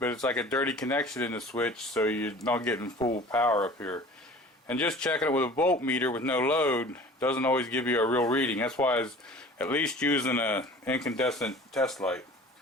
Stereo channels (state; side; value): normal; both; correlation 0.44